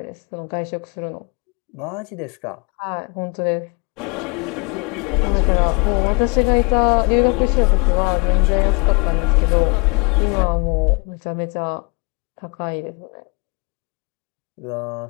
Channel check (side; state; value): right; quieter; 31.8 dB